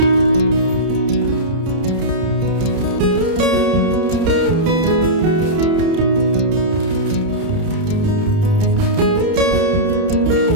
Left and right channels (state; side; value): late; left; 30 ms